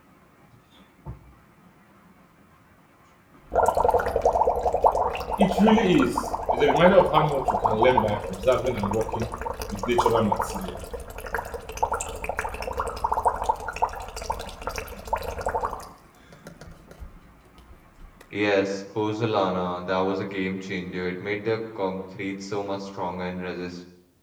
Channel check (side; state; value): both; identical; correlation 1.00